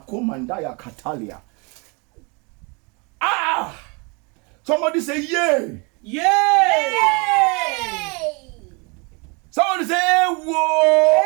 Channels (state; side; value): quieter; left; 31.0 dB